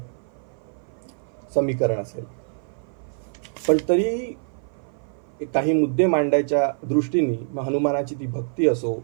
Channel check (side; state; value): left; silent; 56 dB below the other